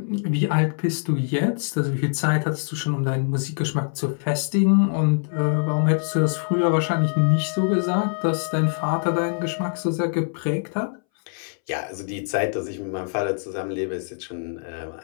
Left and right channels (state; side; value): silent; right; 63 dB below the other